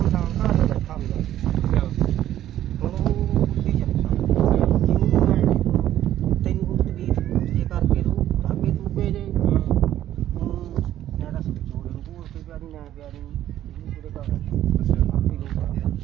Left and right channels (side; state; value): left; quieter; 12.3 dB